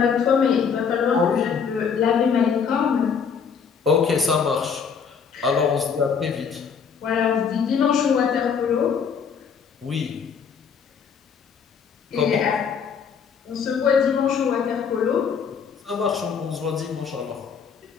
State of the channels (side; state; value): right; quieter; 6.5 dB